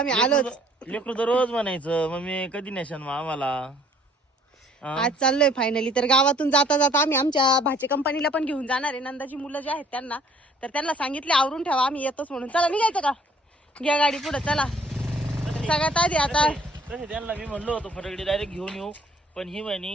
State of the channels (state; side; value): normal; both; correlation 0.58